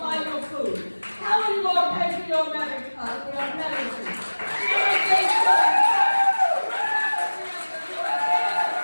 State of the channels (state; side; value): inverted; both; correlation -1.00